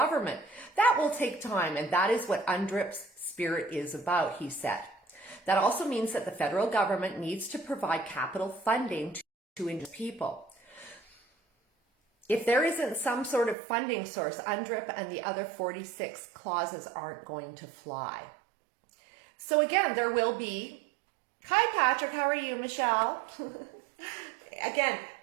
That will take time, and that is what UNDRIP's spirit is about, he said. That also means that the federal government needs to provide capital funding to Indigenous people. If there isn't some sort of funding source, UNDRIP and the other 46 clauses aren't going to fly. So again, there will be... Hi, Patrick. How are you, Michelle? Again,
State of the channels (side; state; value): left; drops out; at 13.6 s